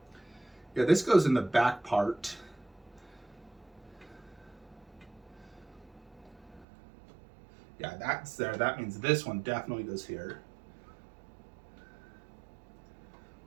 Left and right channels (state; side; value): drops out; left; at 6.7 s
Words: Yeah, this goes in the back part. Yeah, that's there. That means this one definitely goes here.